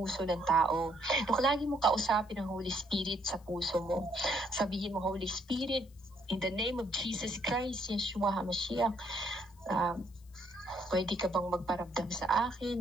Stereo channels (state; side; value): noise; left; hiss, 30 dB below the sound